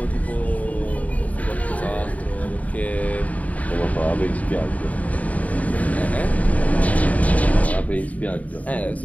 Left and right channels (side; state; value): right; late; 0.071 ms